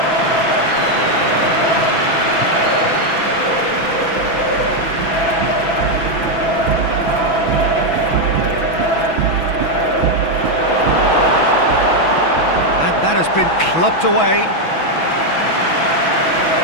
And that has been clubbed away.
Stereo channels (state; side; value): late; right; 6.1 ms